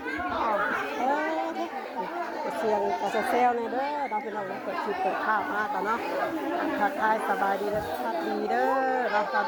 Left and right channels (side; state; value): both; identical; correlation 1.00